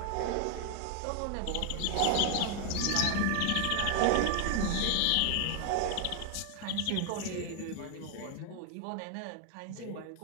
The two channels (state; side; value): different; both; correlation 0.00